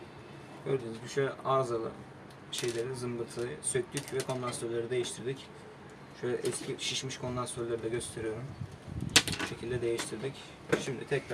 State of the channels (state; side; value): identical; both; correlation 1.00